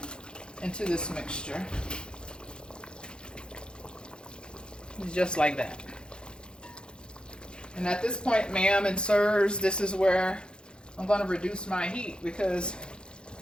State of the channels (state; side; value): late; right; 0.050 ms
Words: into this mixture. Just like that. And at this point, ma'am and sirs, this is where I'm going to reduce my heat because